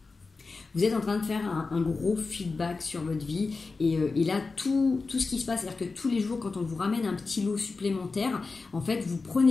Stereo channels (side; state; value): right; quieter; 4.1 dB